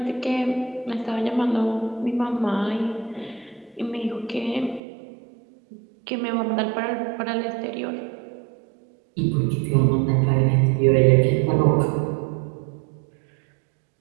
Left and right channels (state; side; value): drops out; left; at 4.8 s